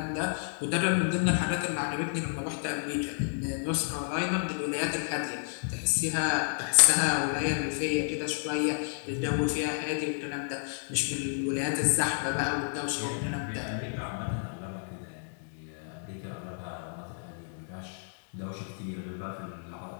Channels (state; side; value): silent; right; digital silence